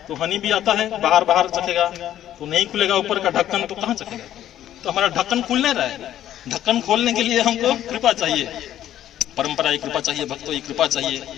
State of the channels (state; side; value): quieter; right; 11.9 dB